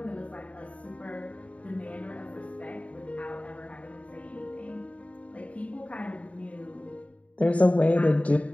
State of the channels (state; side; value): late; right; 0.066 ms